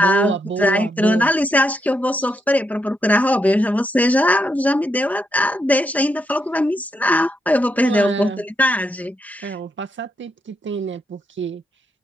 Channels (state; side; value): normal; both; correlation 0.81